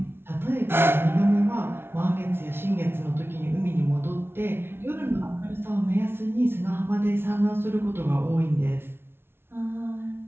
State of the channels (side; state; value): left; late; 0.11 ms